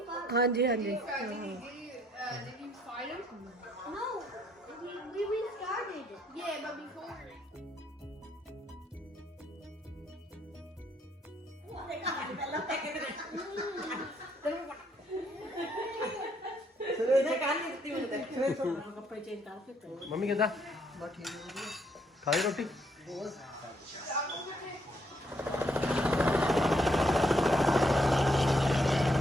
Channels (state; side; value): normal; both; correlation 0.71